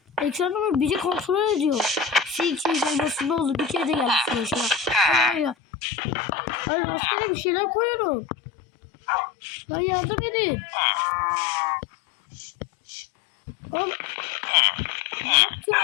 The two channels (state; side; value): drops out; right; at 5.6 s